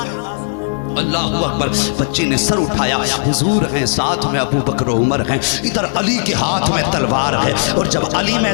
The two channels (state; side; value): silent; right; digital silence